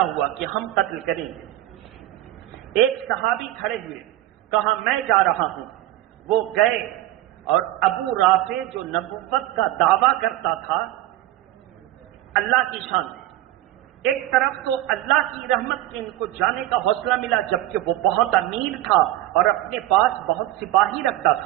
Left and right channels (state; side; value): quieter; left; 14.9 dB